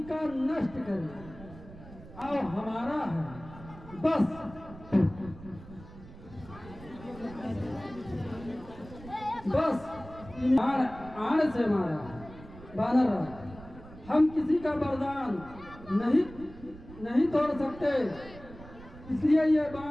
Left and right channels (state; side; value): noise; right; rumble, 17 dB below the sound